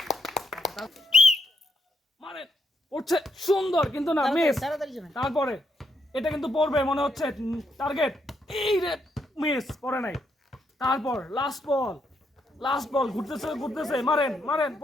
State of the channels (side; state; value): both; normal; correlation 0.77